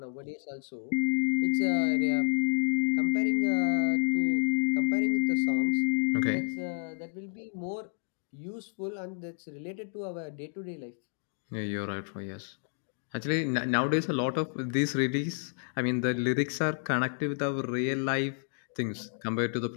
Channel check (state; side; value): silent; right; digital silence